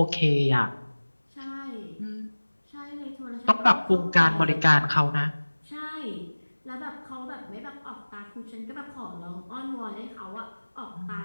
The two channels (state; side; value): inverted; both; correlation -1.00